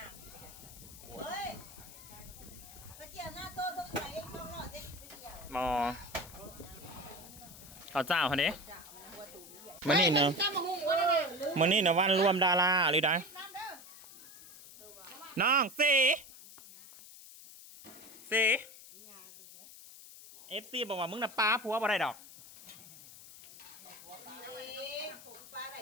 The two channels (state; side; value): noise; left; hiss, 17 dB below the sound